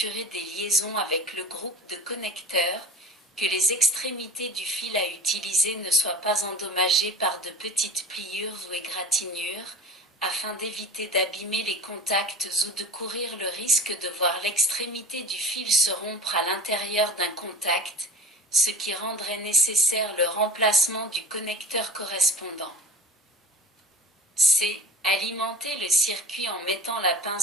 des liaisons avec le groupe de connecteurs, que les extrémités du fil à utiliser ne soient pas endommagées par de petites pliures ou égratignures, afin d'éviter d'abîmer les contacts ou de courir le risque de voir l'extrémité du fil se rompre à l'intérieur d'un contact, ce qui rendrait nécessaire le remplacement du connecteur correspondant. C. Alimenter le circuit en mettant la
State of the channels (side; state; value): both; normal; correlation 0.38